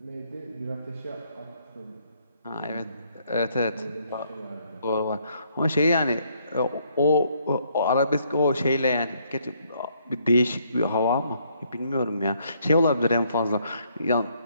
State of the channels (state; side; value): inverted; both; correlation -0.70